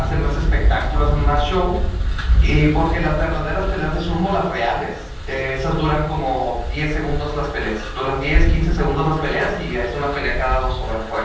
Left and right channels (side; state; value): both; identical; correlation 1.00